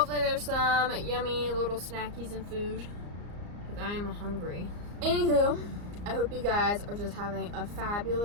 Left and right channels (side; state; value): left; late; 34 ms